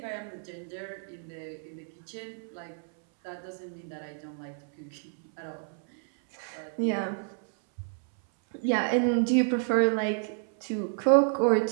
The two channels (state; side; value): silent; left; 58 dB below the other